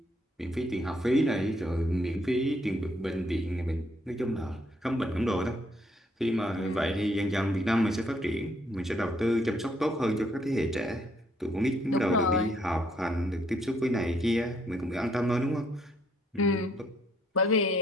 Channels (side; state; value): both; normal; correlation 0.69